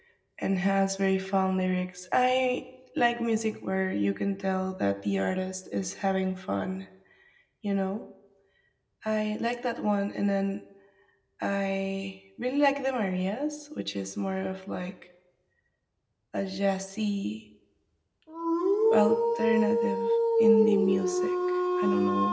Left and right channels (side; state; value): both; identical; correlation 1.00